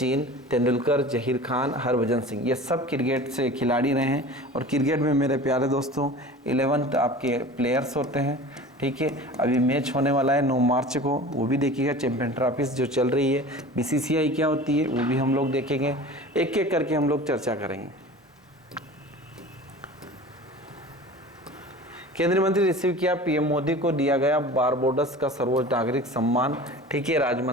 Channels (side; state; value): both; normal; correlation 0.39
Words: तेंदुलकर, जहीर खान, हरभजन सिंह, ये सब क्रिकेट से खिलाड़ी रहे हैं। और क्रिकेट में मेरे प्यारे दोस्तों 11 आपके प्लेयर्स होते हैं। ठीक है, अभी मैच होने वाला है 9 मार्च को, वो भी देखिएगा। चैंपियन ट्रॉफीज जो चल रही है, बीसीसीआई क्या होती है वो भी हम लोग देखेंगे। एक एक करके हम लोग चर्चा करेंगे। केंद्रीय मंत्री रिसीव किया पीएम मोदी को दिया गया बारबोडस का सर्वोच्च नागरिक सम्मान। ठीक है, राज्य